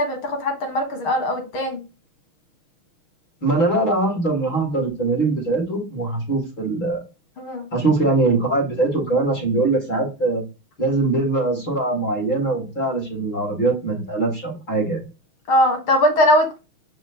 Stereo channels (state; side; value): late; right; 6.4 ms